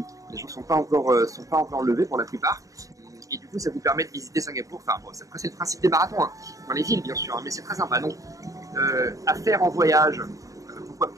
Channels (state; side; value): late; left; 0.16 ms